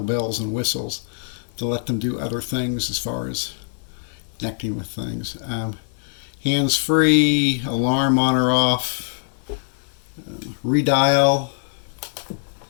bells and whistles to let them do other things as far as connecting with things. Hands-free, alarm on or off, redial,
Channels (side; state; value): right; silent; digital silence